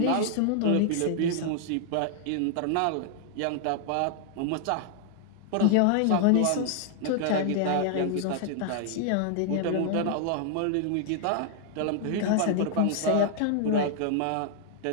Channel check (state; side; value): different; both; correlation 0.00